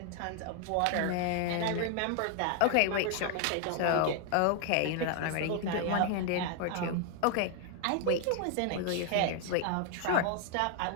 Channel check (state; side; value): different; both; correlation 0.01